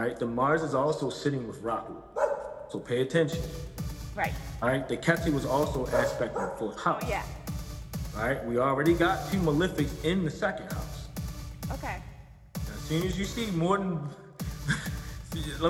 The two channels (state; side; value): identical; both; correlation 1.00